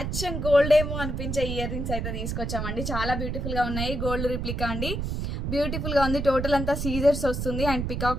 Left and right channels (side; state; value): right; noise; rumble, 3 dB below the sound